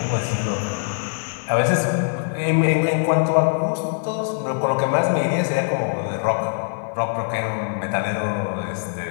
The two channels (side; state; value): right; silent; 63 dB below the other